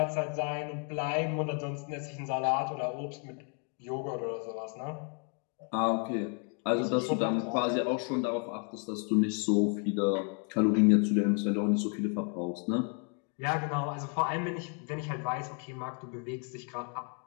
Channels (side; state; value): right; quieter; 39.9 dB